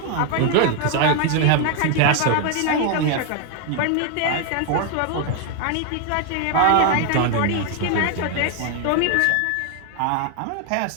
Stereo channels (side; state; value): both; different; correlation 0.01